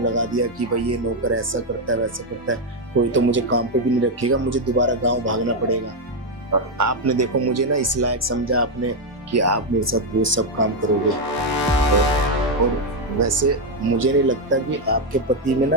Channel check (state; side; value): normal; both; correlation 0.03